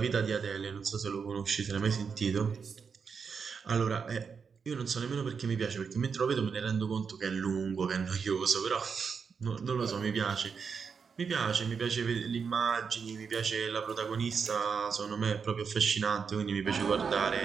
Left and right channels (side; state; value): left; quieter; 5.9 dB